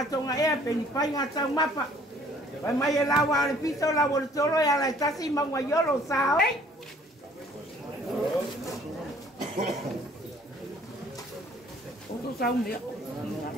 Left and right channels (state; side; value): normal; both; correlation 0.57